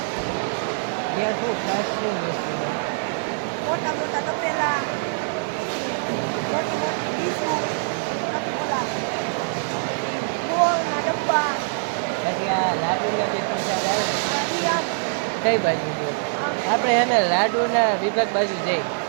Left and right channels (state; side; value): silent; left; digital silence